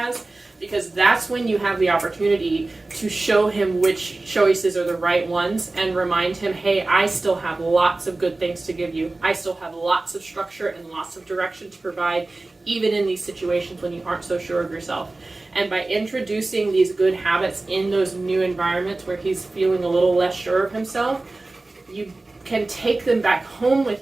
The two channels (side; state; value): left; quieter; 3.1 dB